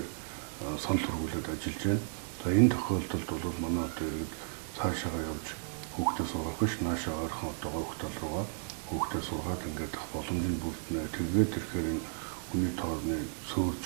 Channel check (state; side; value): silent; left; digital silence